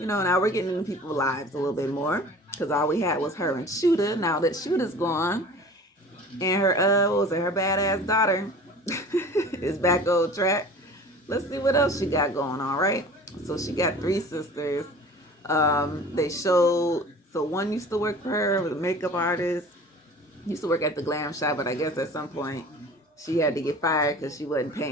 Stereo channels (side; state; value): both; normal; correlation 0.43